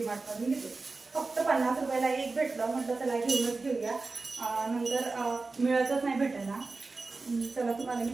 घेते. फक्त 50 रुपयाला एक भेटलं म्हटलं चला घेऊनच घेऊया. नंतर मिळतच नाही भेटेल ना चला तुम्हाला मी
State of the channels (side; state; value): left; quieter; 3.8 dB